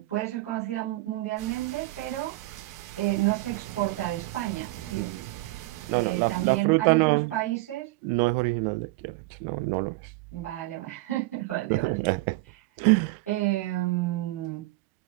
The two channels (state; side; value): quieter; left; 19.8 dB